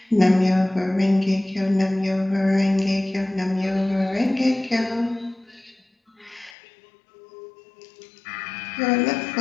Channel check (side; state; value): right; drops out; at 6.6 s